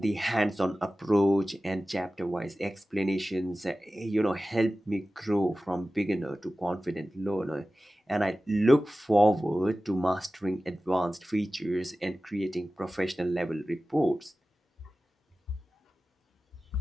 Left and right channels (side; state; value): both; normal; correlation 0.96